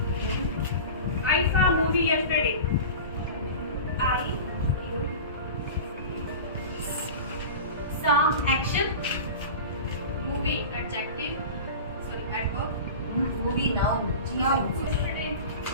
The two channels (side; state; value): both; inverted; correlation -0.33